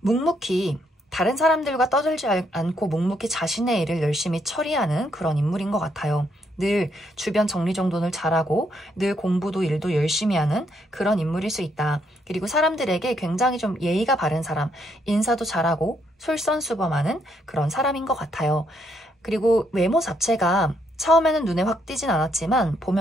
묵묵히 다른 사람들과 떠들지 않고 묵묵히 자신의 일을 열심히 처리하는 그런 인물인 것 같아요. 늘 주변 정리정돈을 잘하고 늘 공부도 일도 열심히 하는 그런 인물일 수 있다. 그리고 사람들에게 굉장히 좀 예의가 바른 사람, 인사도 잘하고 솔선수범하는 그런 사람인 것 같아요. 그리고 외모 자체가 처음에는 눈에 확 띄진 않았지만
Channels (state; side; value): normal; both; correlation 0.74